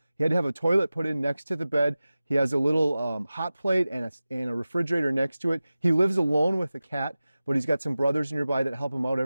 had to have a toilet put in next to the bed. He has a little hot plate and a refrigerator next to it. He lives alone with a cat, but he's got some brothers nearby that help him out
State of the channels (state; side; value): inverted; both; correlation -0.96